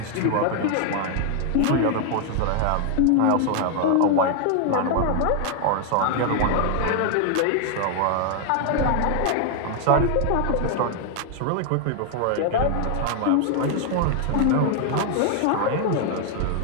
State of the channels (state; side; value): different; both; correlation 0.00